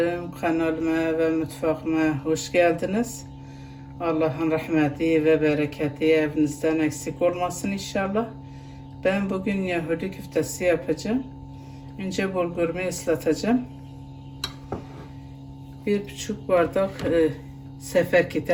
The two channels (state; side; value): identical; both; correlation 1.00